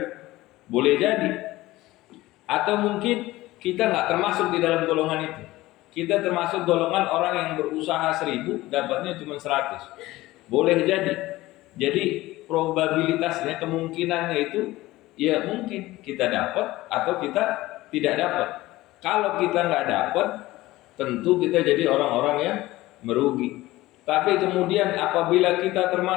Boleh jadi. Atau mungkin kita nggak termasuk di dalam golongan itu. Kita termasuk golongan orang yang berusaha 1.000, dapatnya cuma 100. Boleh jadi. Jadi probabilitasnya, kemungkinannya itu ya mungkin kita dapat atau kita tidak dapat. Kalau kita nggak dapat, tentu kita jadi orang-orang yang merugi. Tapi kemudian apabila kita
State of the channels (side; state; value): right; quieter; 17.9 dB